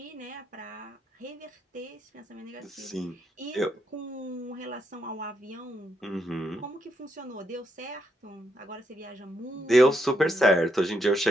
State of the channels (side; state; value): both; normal; correlation 0.78